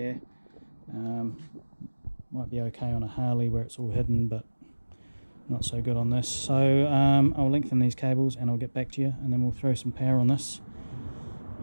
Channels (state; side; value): inverted; both; correlation -1.00